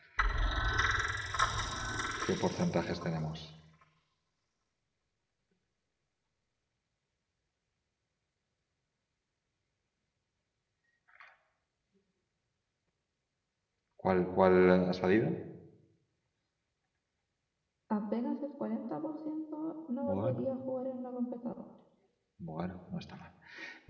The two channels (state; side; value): identical; both; correlation 1.00